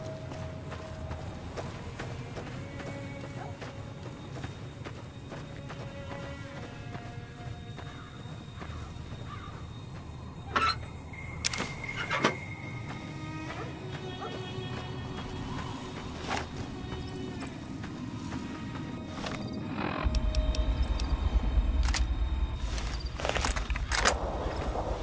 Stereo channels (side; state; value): both; identical; correlation 1.00